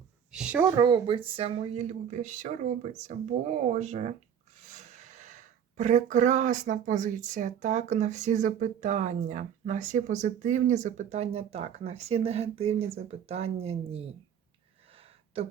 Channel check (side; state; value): left; quieter; 8.5 dB